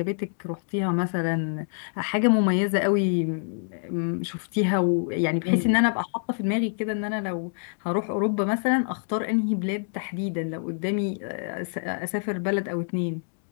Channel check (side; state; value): right; silent; digital silence